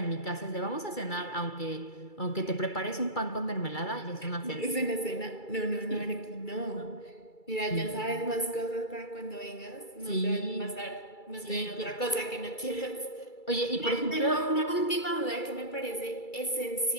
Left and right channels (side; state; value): right; late; 2.3 ms